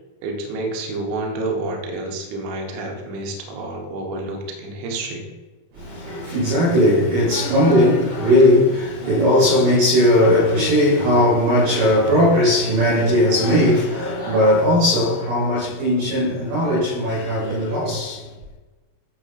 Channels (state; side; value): late; left; 29 ms